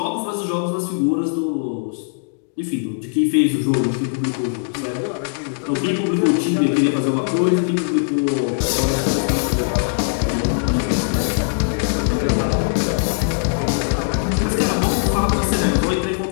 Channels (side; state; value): right; silent; digital silence